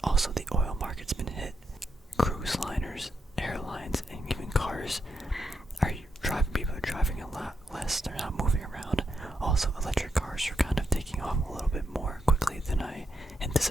Also, the oil market's been hit. Cruise liners, airlines, and even cars people are driving a lot less. They're not moving around. Also, electric cars are kind of taking off a little bit more quickly than I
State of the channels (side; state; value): both; normal; correlation 0.82